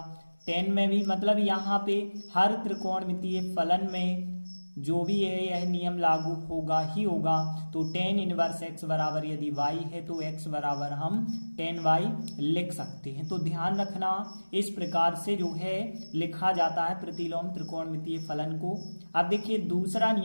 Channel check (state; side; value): inverted; both; correlation -1.00